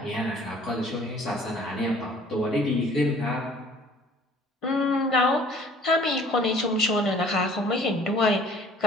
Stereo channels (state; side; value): normal; both; correlation 0.53